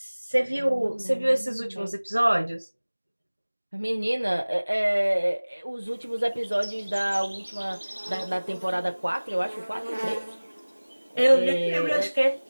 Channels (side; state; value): both; inverted; correlation -1.00